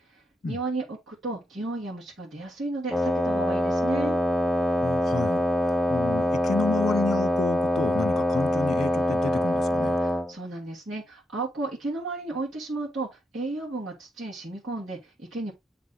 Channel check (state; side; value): normal; both; correlation 0.85